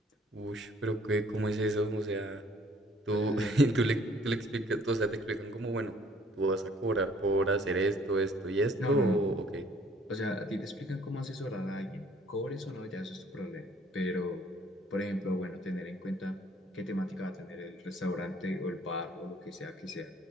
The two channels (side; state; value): both; normal; correlation 0.59